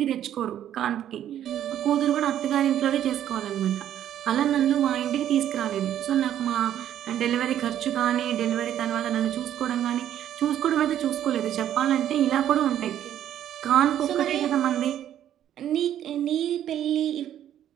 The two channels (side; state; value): left; quieter; 11.0 dB